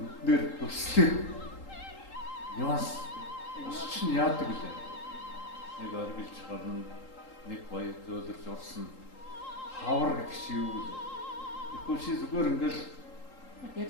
төслөө. Нюанс чинь яадаг лээ. Нэг оргилж гарна, нэг гоё зөөлрж урсна. Хавар гэдэг чи юу вэ? Тэгэхгүй чи зүгээр ингээл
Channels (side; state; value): right; late; 3.8 ms